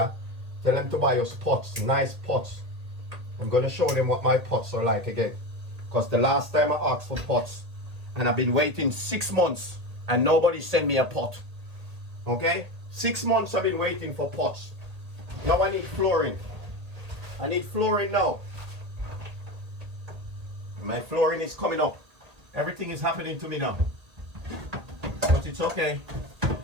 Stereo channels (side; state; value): left; late; 1.8 ms